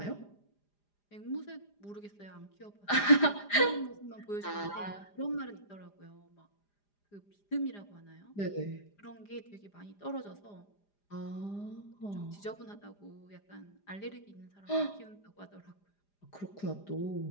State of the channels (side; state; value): right; late; 4.9 ms